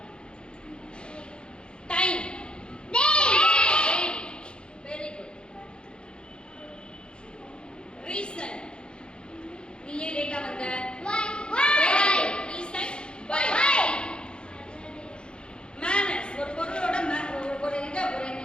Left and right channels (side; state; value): right; late; 0.052 ms